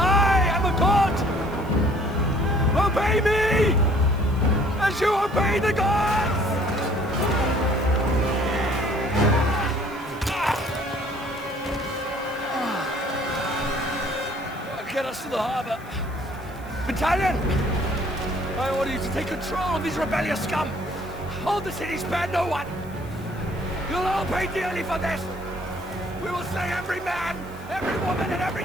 am a god. Obey me, as you obey the gods! us to the harbor. Battalion! I order you to take control of these rebellious scum. Hold the city, spare no one. You'll all pay dearly for this. We will slay every man, every woman, and every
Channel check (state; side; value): noise; right; hiss, 25 dB below the sound